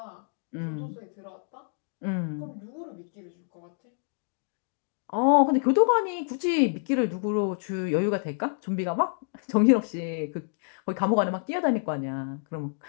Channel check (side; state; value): right; silent; digital silence